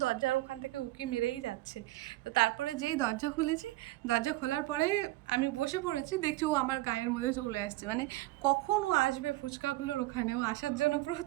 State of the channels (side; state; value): left; quieter; 18.5 dB